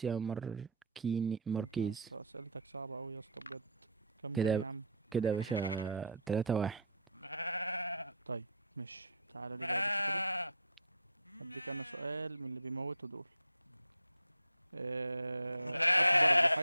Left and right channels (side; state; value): both; inverted; correlation -0.46